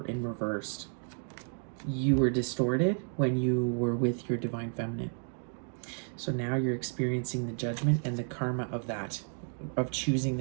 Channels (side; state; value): left; silent; 56 dB below the other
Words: in reversed, you were distorted when you were with your divine feminine. So now you're experiencing the judgment and the karma of that, of choosing